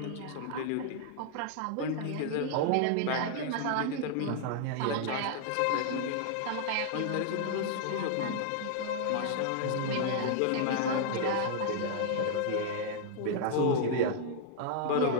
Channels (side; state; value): both; different; correlation -0.01